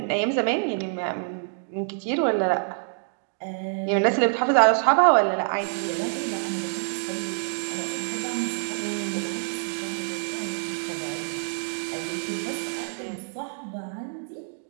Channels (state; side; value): silent; left; digital silence